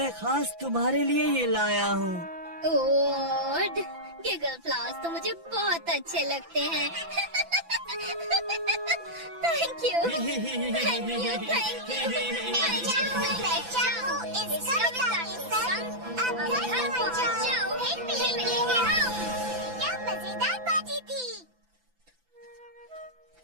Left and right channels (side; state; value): left; late; 6.0 ms